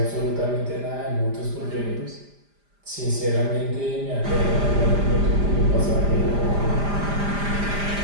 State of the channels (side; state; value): left; late; 5.0 ms